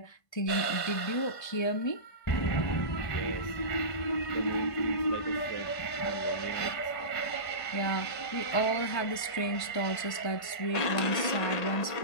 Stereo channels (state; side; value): late; right; 1.5 ms